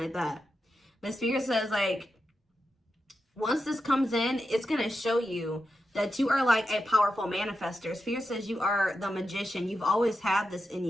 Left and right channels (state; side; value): normal; both; correlation 0.88